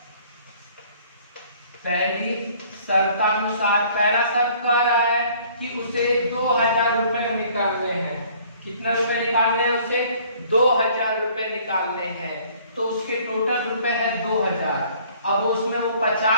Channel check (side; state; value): both; inverted; correlation -0.56